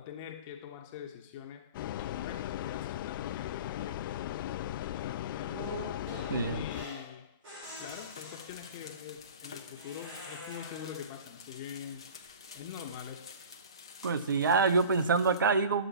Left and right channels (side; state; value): both; inverted; correlation -0.39